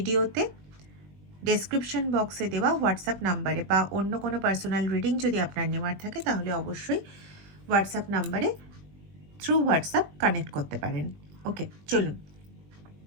ডেসক্রিপশন বক্সে দেওয়া হোয়াটসঅ্যাপ নাম্বারে, বা অন্য কোনো পার্সোনাল রিডিং যদি আপনার নেওয়ার থাকে তাহলে অবশ্যই হোয়াটসঅ্যাপ নাম্বারে থ্রু হোয়াটসঅ্যাপ কানেক্ট করতে পারেন। ওকে, চলুন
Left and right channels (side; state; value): left; late; 20 ms